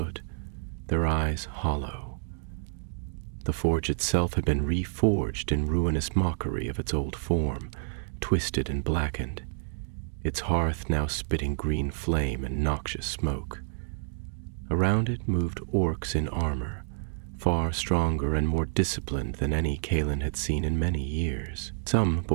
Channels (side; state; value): left; silent; digital silence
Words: their eyes hollow. The forge itself had been reforged in ruinous mockery of its old form, twisted and blackened, its hearth now spitting green flame and noxious smoke. Around it moved orcs in armor, far stronger and more disciplined than any Calin had seen in many years. Some